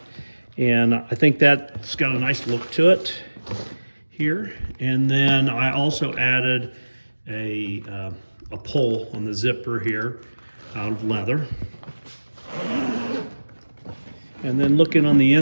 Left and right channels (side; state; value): both; inverted; correlation -1.00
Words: and I think that's got a nice look to it here. And then I also added a pull on the zipper here out of leather. And then looking on the